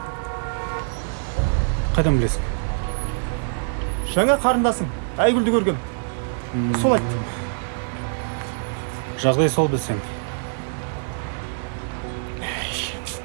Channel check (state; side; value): silent; left; digital silence